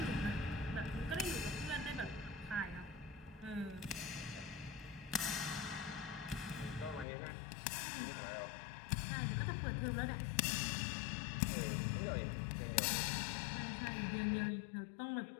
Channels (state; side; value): drops out; right; at 7.1 s